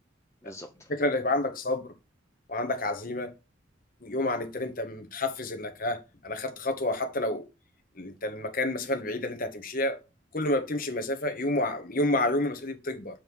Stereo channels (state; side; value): normal; both; correlation 0.10